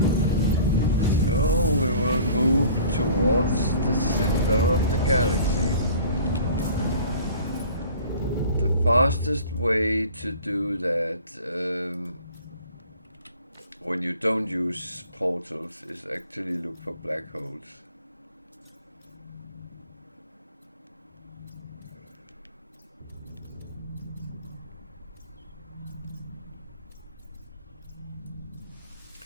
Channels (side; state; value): both; inverted; correlation -0.47